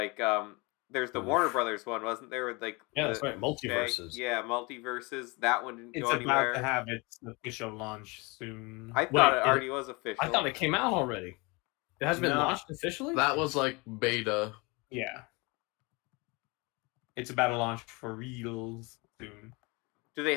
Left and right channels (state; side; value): quieter; right; 26.9 dB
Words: there's the Warner Brothers one, wasn't there? With like Yeah, that's right. Multiverses. Yeah, Multiverses. That one didn't It's go anywhere. about to have its official launch soon. I thought it Wait, already was official. I thought it came out already. It hasn't been No. launched officially? That was like beta. Yeah. It's about to launch for reals soon. Do they